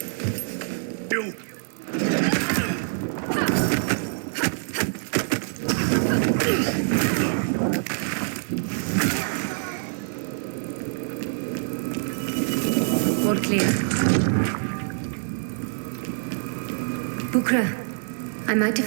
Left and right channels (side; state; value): left; silent; digital silence